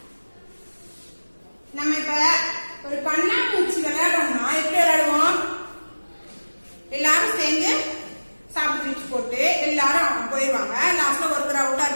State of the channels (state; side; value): inverted; both; correlation -1.00